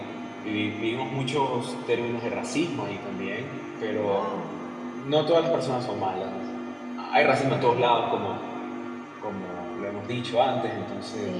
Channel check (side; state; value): both; identical; correlation 1.00